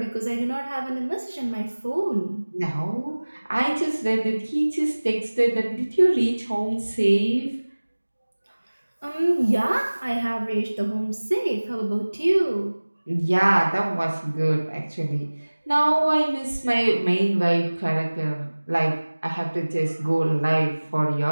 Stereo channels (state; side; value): inverted; both; correlation -1.00